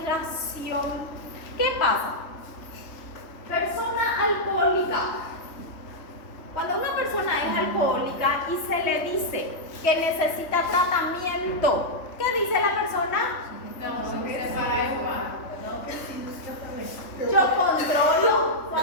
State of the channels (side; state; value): right; late; 3.5 ms